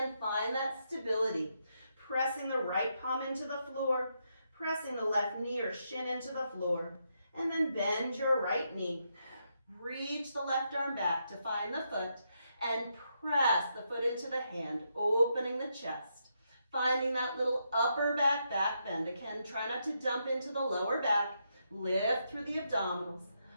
find that stability. Pressing the right palm into the floor. Pressing the left knee or shin into the floor. And then bend your right knee. Reach the left arm back to find the foot. And press the foot into the hand, opening the chest. Finding that little upper back bend. Again, try not to dump into the lower back. Lift through the abdominals.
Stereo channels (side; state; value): both; inverted; correlation -0.80